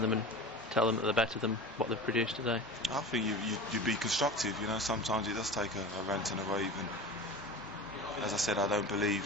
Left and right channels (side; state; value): both; normal; correlation 0.33